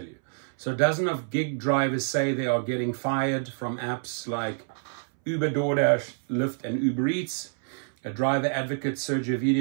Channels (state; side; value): silent; left; 60 dB below the other